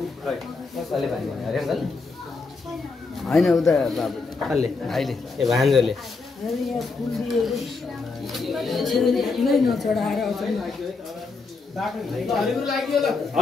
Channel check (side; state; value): right; quieter; 4.1 dB